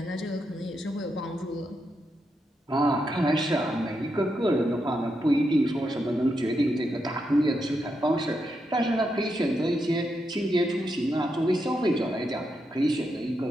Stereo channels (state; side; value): normal; both; correlation 0.83